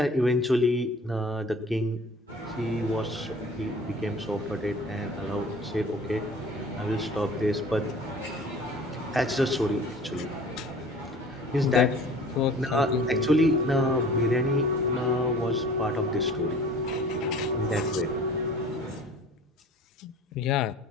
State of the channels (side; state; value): both; normal; correlation 0.45